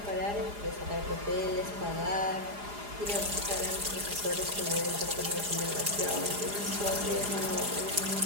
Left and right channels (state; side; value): late; left; 4.9 ms